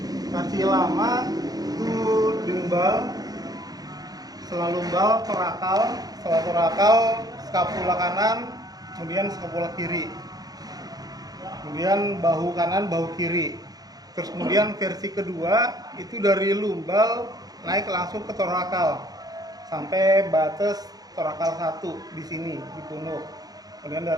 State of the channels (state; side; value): late; left; 0.19 ms